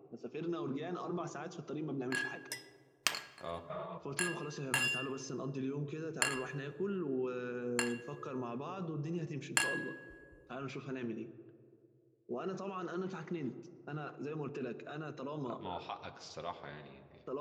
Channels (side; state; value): both; identical; correlation 1.00